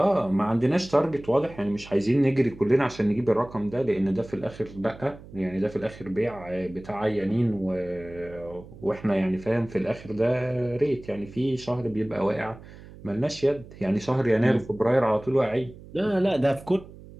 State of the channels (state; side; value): noise; right; hum, 18 dB below the sound